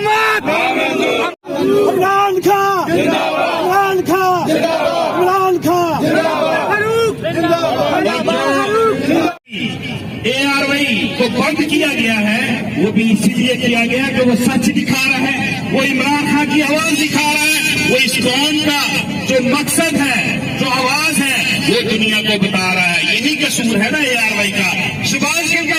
इमरान खान, इमरान खान, इमरान खान, ARY को बंद किया गया है, वो भी इसीलिए किया गया कि वो सच दिखा रहा है, वो इमरान खान की आवाज दिखा रहा है, वो इस कौम का जो मकसद है, जो आवाज है, वो दुनिया को बता रहा है। यही कसूर है ना ARY का। शहबाज गिल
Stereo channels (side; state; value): both; identical; correlation 1.00